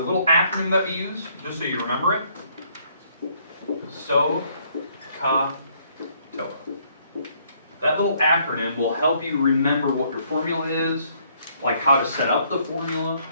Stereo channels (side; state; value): both; inverted; correlation -0.67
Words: acronym that we use, just so you remember it, SO, CA, TOA. That little acronym will help you remember what your formula is, like how to set up the formula,